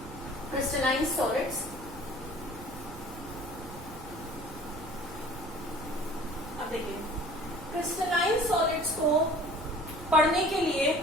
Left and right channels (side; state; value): right; noise; rumble, 15 dB below the sound